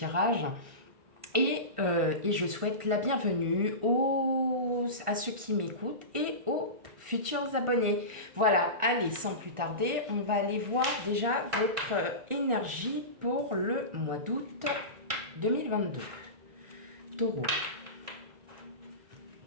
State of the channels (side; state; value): left; late; 1.5 ms